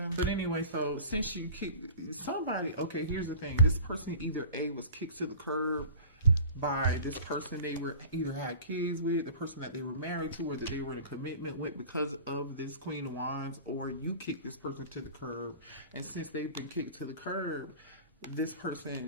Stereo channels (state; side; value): inverted; both; correlation -0.40